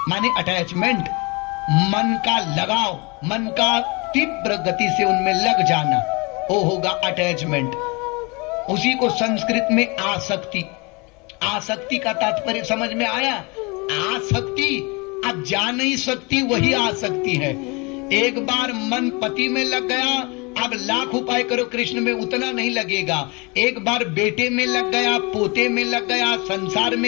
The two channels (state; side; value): quieter; right; 28.2 dB